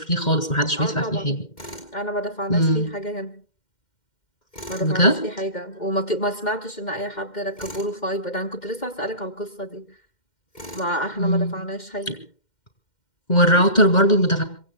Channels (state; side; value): late; right; 2.1 ms